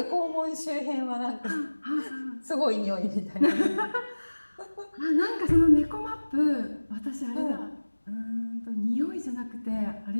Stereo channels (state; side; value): inverted; both; correlation -1.00